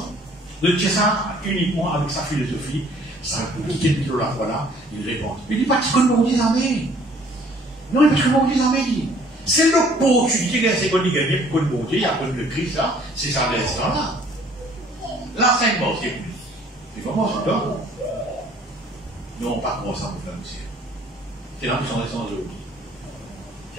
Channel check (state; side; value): normal; both; correlation 0.57